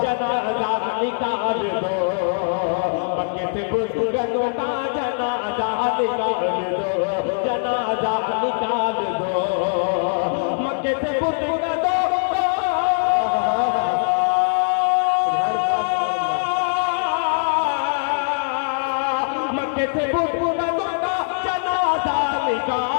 जनाजा निकाल दो, मक्के से बुत कदों का जनाजा निकाल दो, जनाजा निकाल दो, मक्के से बुत कदों, मक्के से बुत कदों का जनाजा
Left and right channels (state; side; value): silent; right; 64 dB below the other